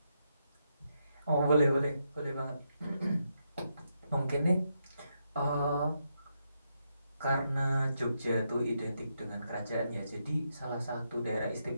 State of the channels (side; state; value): both; inverted; correlation -0.82